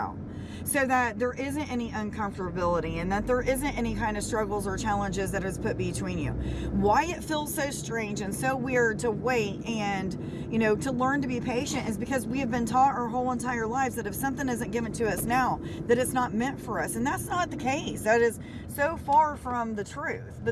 so that there isn't any uncomfortability and that there isn't any kind of struggles or challenges that is put between you. Why it feels so strange and so weird to wait and, to learn to be patient is because we have been taught our whole entire lives that if something isn't given to us now, that it's not meant for us. And that's not the case. That is so far from the truth,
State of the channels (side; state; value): both; identical; correlation 1.00